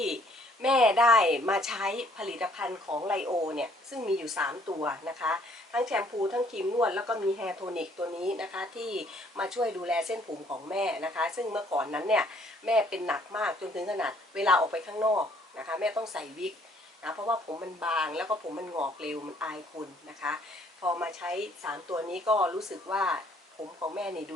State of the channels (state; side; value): normal; both; correlation 0.63